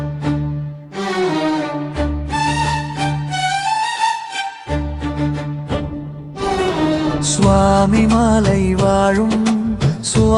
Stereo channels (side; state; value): both; identical; correlation 1.00